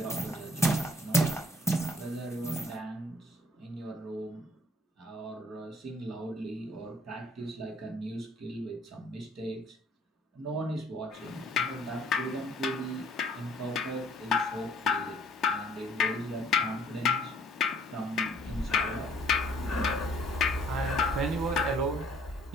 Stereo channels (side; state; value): both; normal; correlation 0.58